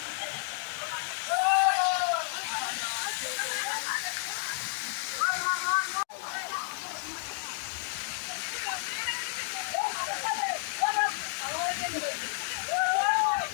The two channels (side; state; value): right; silent; digital silence